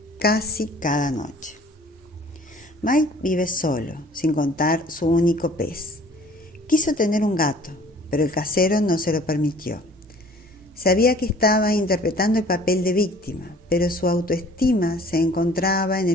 casi cada noche. Mike vive solo, sin contar su único pez. Quiso tener un gato, pero el casero no se lo permitió. Sabía que estaba interpretando el papel de víctima, pero su autoestima se encontraba en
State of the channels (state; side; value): normal; both; correlation 0.52